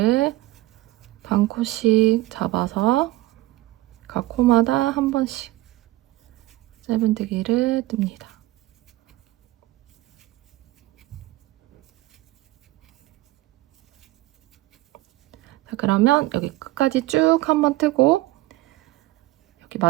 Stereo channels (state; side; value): quieter; left; 18.0 dB